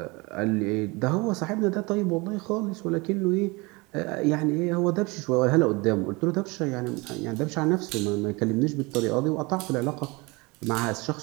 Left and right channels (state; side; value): quieter; left; 25.7 dB